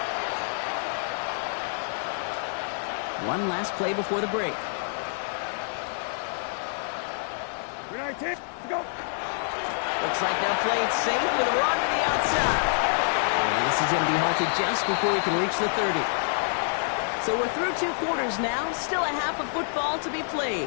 line. One last play before the break. 319, go. Looks like they'll play it safe with a run to the outside. And this is going to be halted just before he can reach the 30. So we're through 2 quarters now, still a half of football to be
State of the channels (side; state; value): right; silent; 60 dB below the other